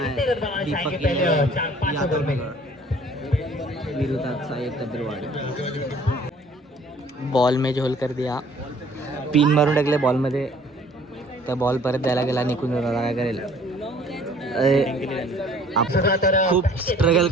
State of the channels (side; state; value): both; normal; correlation 0.55